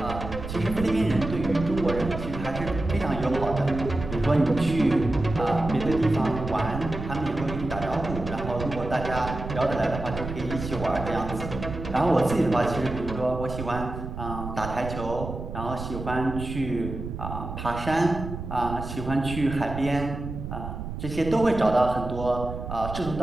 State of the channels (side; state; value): right; noise; rumble, 7 dB below the sound